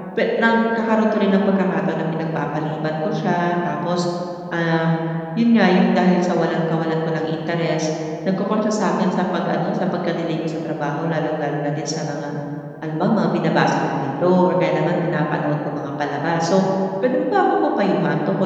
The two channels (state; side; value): identical; both; correlation 1.00